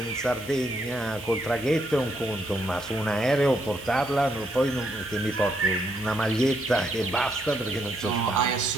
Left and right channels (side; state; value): right; noise; hiss, 19 dB below the sound